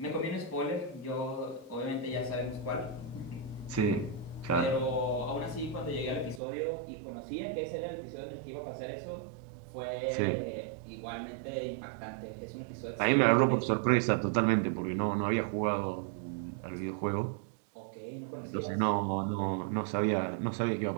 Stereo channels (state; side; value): drops out; left; at 6.4 s